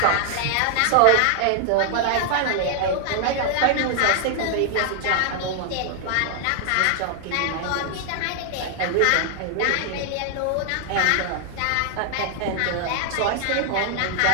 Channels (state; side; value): different; both; correlation 0.00